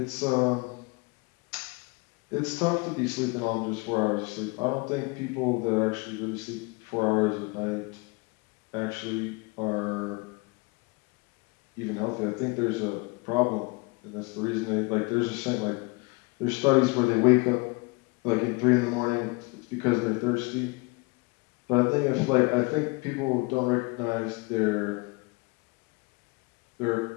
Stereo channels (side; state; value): right; quieter; 28.0 dB